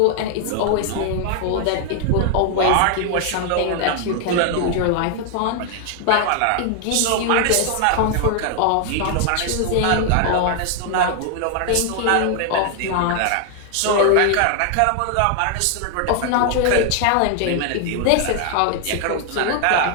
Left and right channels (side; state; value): both; different; correlation 0.00